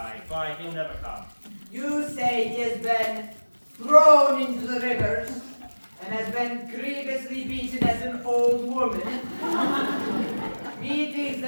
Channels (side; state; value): both; inverted; correlation -1.00